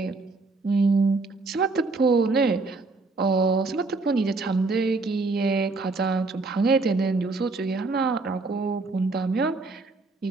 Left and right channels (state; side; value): quieter; left; 3.6 dB